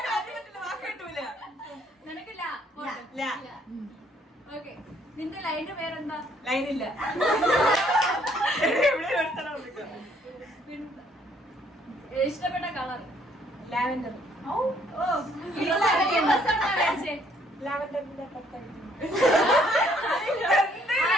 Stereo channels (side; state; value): both; normal; correlation 0.65